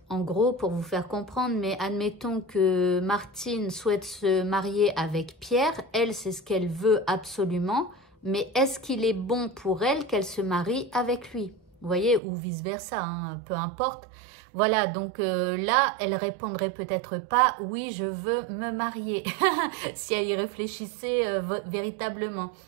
en gros pour vous faire comprendre, mais admettons que Martine souhaite se marier avec Pierre, elle c'est ce qu'elle veut absolument, mais est-ce qu'il est bon pour elle qu'elle se marie avec lui? Vous voyez, ou vice versa, hein, peu importe. Voilà, donc là, elle répondrait peut-être pas, oui, je veux me marier, si elle y réfléchissait véritablement.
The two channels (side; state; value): left; drops out; at 12.2 s